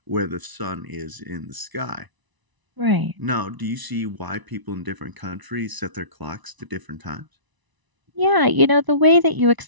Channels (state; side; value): late; left; 1.0 ms